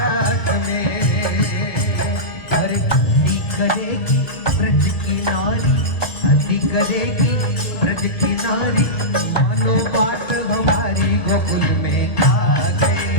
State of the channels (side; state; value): right; late; 1.6 ms